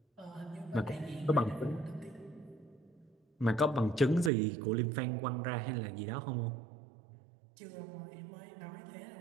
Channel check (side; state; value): left; drops out; at 4.3 s